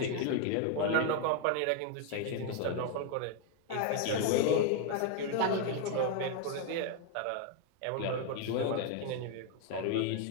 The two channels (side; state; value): both; different; correlation 0.01